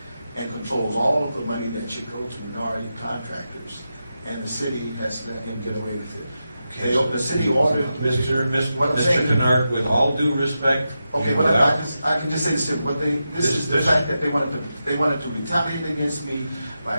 and controls all of the money that should go to minority contractors, and the city has let him get away with it. The city ordered... Mr. Kennard, with all due respect... Okay, but I can just say this, this is the fact that they wanted to retaliate against me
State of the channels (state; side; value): inverted; both; correlation -0.89